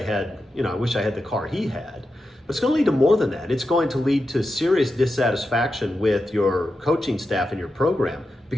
had the car he had, but it's going to lead to more than that. It's going to lead to serious dissatisfaction with your coaching staff and your program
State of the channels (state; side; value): normal; both; correlation 0.89